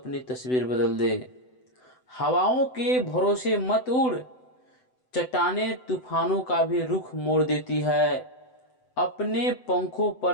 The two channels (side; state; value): right; late; 7.9 ms